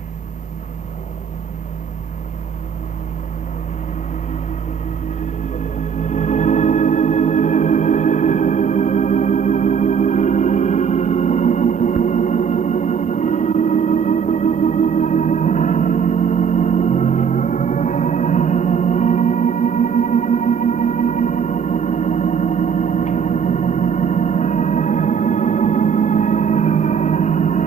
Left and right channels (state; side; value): quieter; left; 7.1 dB